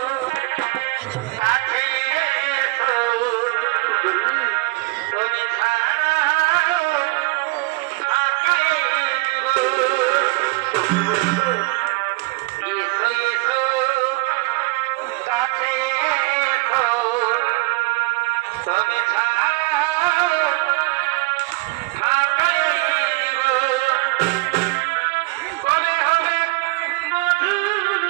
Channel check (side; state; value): left; quieter; 24.0 dB